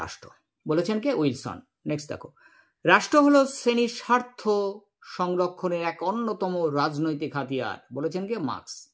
রাষ্ট্র। বলেছেন কে? উইলসন। নেক্সট দেখো, রাষ্ট্র হলো শ্রেণীর স্বার্থ সংরক্ষণের এক অন্যতম রাজনৈতিক হাতিয়ার। বলেছেন কে? মার্কস।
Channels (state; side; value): identical; both; correlation 1.00